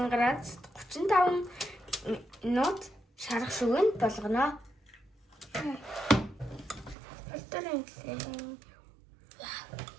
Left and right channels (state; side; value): drops out; left; at 7.0 s